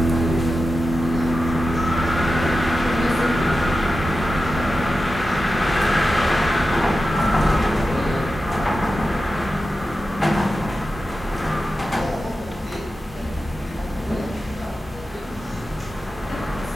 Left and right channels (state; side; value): normal; both; correlation 0.92